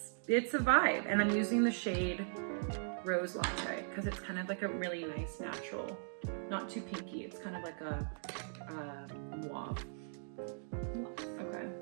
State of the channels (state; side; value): silent; left; digital silence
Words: a vibe. And I'm using the shade Rose Latte because it's kind of like a really nice natural, not too pinky. It's kind of like a mauve. Okay,